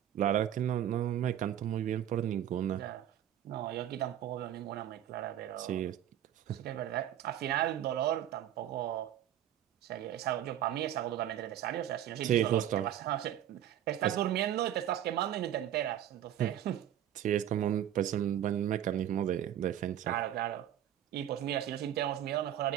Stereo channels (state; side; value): quieter; left; 11.1 dB